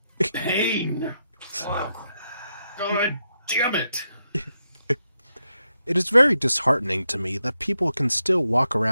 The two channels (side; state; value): both; inverted; correlation -0.84